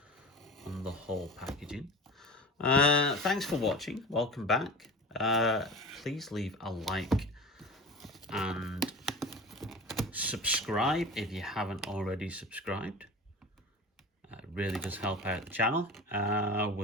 on the whole packaging. Thanks for watching. Welcome back. Please leave a like and subscribe if you haven't already subscribed. It really does help out the channel.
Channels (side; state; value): both; normal; correlation 0.34